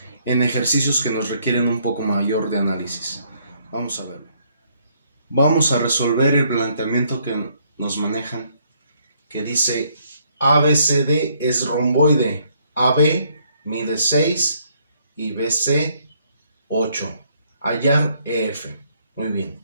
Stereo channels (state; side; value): inverted; both; correlation -0.69